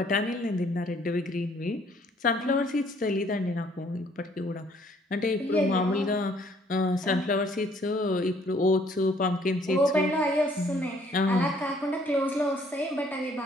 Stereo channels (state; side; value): normal; both; correlation 0.62